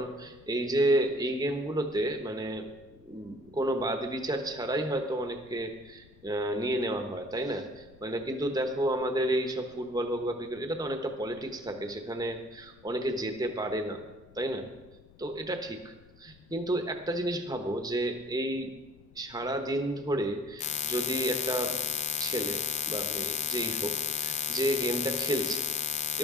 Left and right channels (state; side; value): noise; left; rumble, 25 dB below the sound